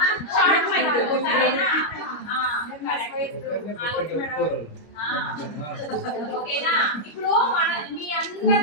ఓకేనా? ఇప్పుడు మన మీ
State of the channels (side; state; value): right; late; 25 ms